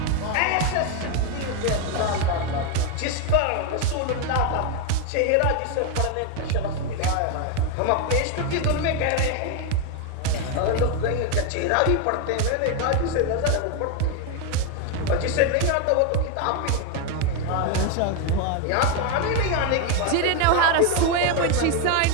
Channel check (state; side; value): different; both; correlation 0.01